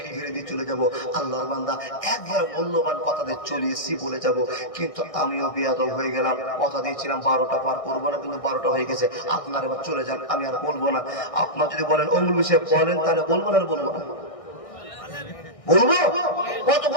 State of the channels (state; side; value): late; right; 1.6 ms